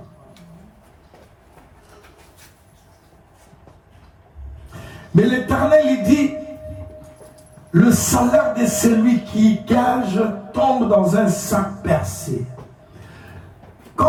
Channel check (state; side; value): identical; both; correlation 1.00